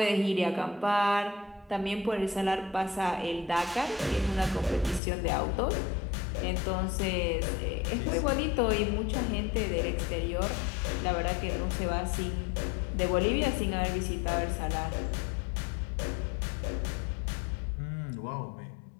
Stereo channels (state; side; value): drops out; right; at 5.0 s